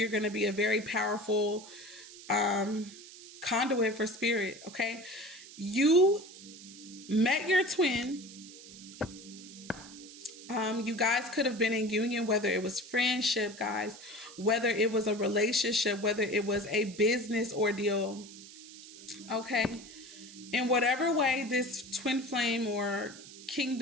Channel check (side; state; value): right; noise; hiss, 17 dB below the sound